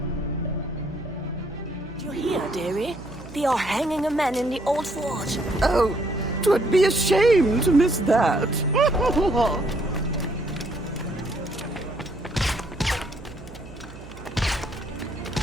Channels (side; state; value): right; noise; hum, 17 dB below the sound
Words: You hear, dearie? They are hanging a man in the old fort. Oh, 'twould be a shame to miss that.